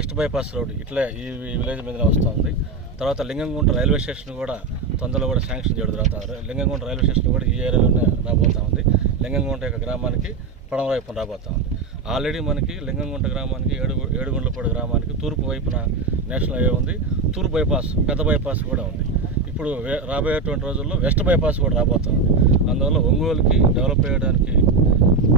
బైపాస్ రోడ్ ఇట్లా ఈ విలేజ్ మీద వస్తుంది. తర్వాత లింగంగుంట రైల్వే స్టేషన్ కూడా తొందరలో కూడా శాంక్షన్ చేయడం జరుగుతుంది. లింగంగుంట రైల్వే స్టేషన్ కూడా ఈ ఏరియాలోనే రాబోతూ ఉంది. లింగంగుంట యొక్క గ్రామానికి పడమ వైపున రాబోతూ ఉంది. ఆల్రెడీ మనకి లింగంగుంట గ్రామానికి, ఏడుగుండ్లపాడు గ్రామానికి తూర్పు వైపున నేషనల్ హైవే ఉంది. తూర్పు బైపాస్, పెద్ద బైపాస్ కూడా ఉంది. ఇప్పుడు రాబోయేటువంటి రోజుల్లో వెస్ట్ బైపాస్ కూడా రాబోతుంది. అందువల్ల ఒంగోలుకి డెవలప్ చేయడానికి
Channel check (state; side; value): quieter; left; 4.3 dB